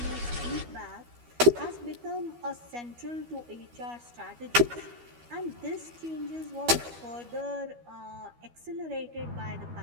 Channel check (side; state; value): left; late; 12 ms